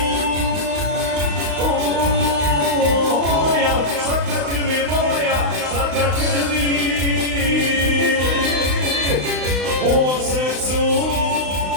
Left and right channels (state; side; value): late; left; 35 ms